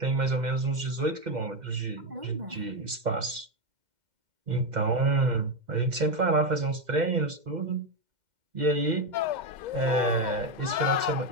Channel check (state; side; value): late; left; 2.1 ms